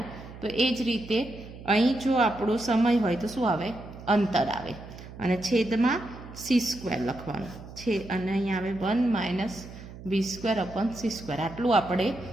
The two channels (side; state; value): right; noise; hum, 15 dB below the sound